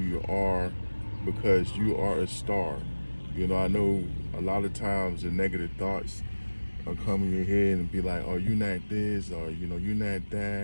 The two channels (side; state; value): both; inverted; correlation -1.00